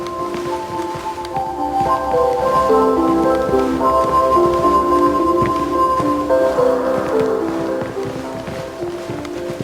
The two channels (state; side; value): identical; both; correlation 1.00